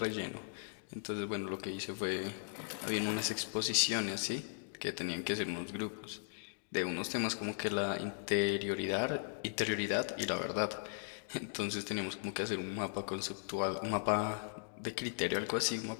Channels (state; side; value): silent; right; digital silence